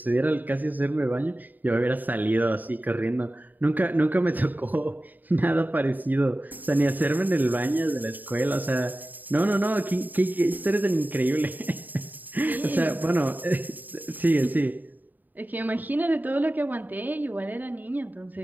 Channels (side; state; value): left; late; 0.086 ms